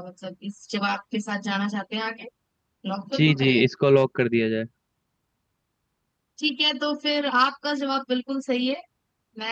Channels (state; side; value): identical; both; correlation 1.00